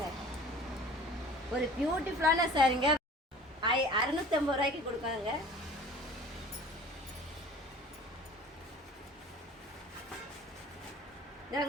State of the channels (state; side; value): normal; both; correlation 0.45